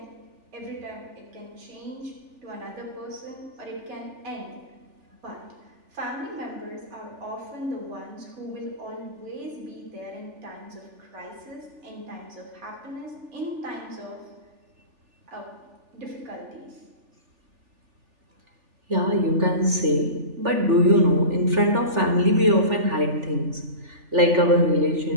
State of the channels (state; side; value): late; left; 3.4 ms